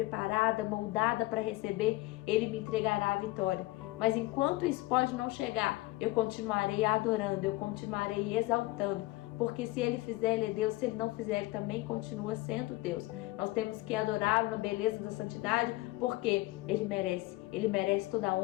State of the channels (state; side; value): quieter; right; 19.7 dB